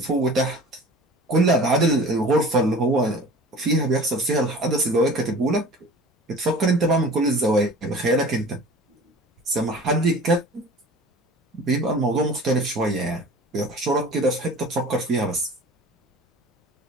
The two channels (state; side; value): normal; both; correlation 0.42